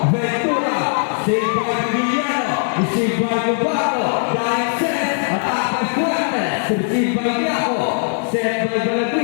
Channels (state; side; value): silent; right; digital silence